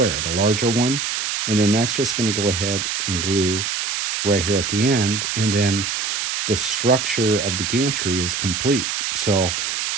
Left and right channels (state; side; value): noise; right; hiss, 2 dB below the sound